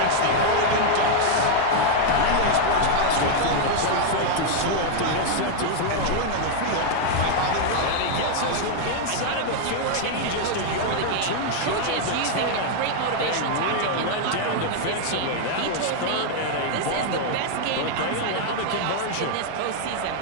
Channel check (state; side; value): different; both; correlation 0.00